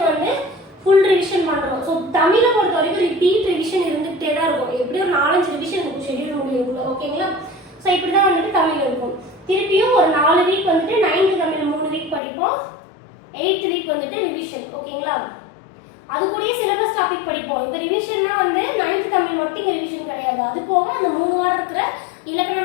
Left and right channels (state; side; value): drops out; right; at 12.2 s